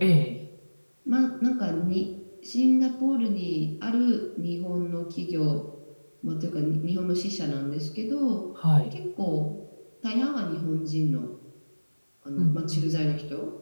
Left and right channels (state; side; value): inverted; both; correlation -1.00